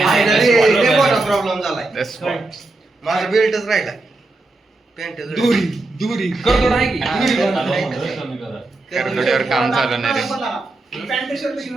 प्रॉब्लेम झालाय. माझा बेल्टच राहिला. पॅन्ट दुरी करतो नाही की करतोड्यावर काम चालू नाही रे.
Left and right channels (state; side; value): quieter; left; 3.1 dB